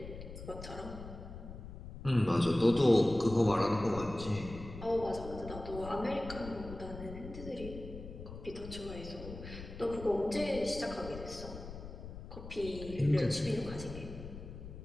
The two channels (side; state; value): left; noise; rumble, 11 dB below the sound